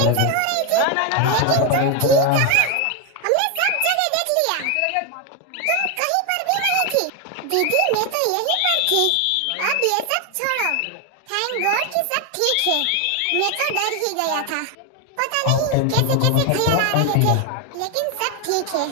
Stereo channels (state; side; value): different; both; correlation 0.01